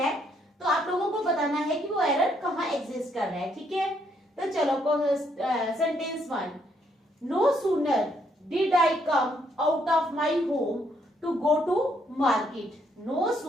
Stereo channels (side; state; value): both; normal; correlation 0.72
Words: तो आप लोगों को बताना है कि वो एरर कहाँ एग्जिस्ट कर रहा है। ठीक है, तो चलो sentence 1। No sooner did I come out of my home to go to market. No